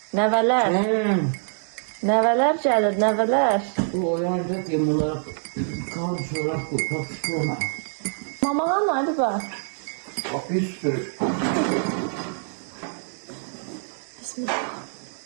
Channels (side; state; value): left; silent; digital silence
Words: nəvələr. Nəvələr gəlir, nəvələr. Bu oyanacak ya bunlar kan çorap bu, tatlı. Mamağa nerede bak? Bak bir sürü. Bismillah.